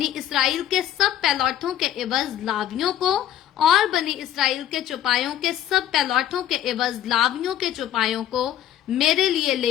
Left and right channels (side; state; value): right; quieter; 11.5 dB